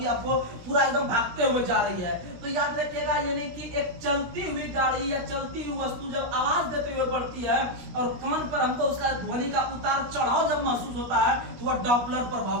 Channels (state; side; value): late; left; 16 ms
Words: आपको पूरा एकदम भागते हुए जा रही है। तो याद रखिएगा, यानी कि एक चलती हुई गाड़ी या चलती हुई वस्तु जब आवाज देते हुए बढ़ती है और कान पर हमको उसका ध्वनि का उतार चढ़ाव जब महसूस होता है तो वह डॉपलर प्रभाव